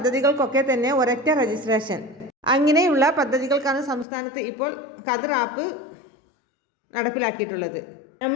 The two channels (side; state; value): right; drops out; at 4.0 s